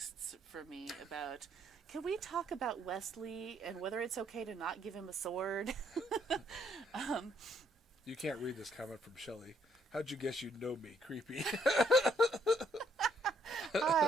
from me about, can we talk about Wesley and whether it's okay to not give him a sword? You can't read this comment from Shelley. How'd you guess you'd know me? Creepy.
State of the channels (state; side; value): normal; both; correlation 0.68